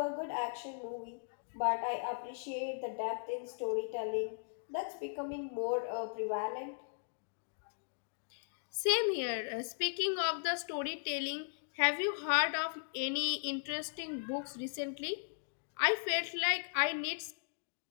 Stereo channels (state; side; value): silent; right; digital silence